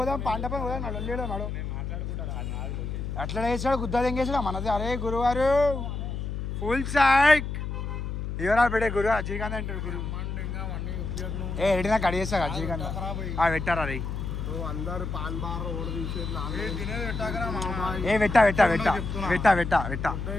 పాండపని పోదాం నడు నడు ఎట్లా వేసాడు గుద్దా ఎంగేసాడు మనది అరే గురువారు ఫుల్ సైక్ ఎవరా పెట్టే గురు అజయకాంత్ అంటారు గురు ఏ రెడీనా కడిగేస్తా అజయకాంత్ పెట్టారా రే అందరు పాన్ బార్ ఓడ ఏ వెట్టా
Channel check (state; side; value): noise; left; hum, 4 dB below the sound